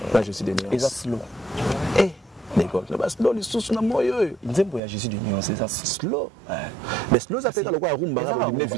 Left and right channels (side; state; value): left; drops out; at 4.8 s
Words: je suis de nuance eza slow d'accord le bas slow lisusu na moyo nzembo ya Jésus de nuance eza slow mais slow ça fait ka lokwa rumba ka limiter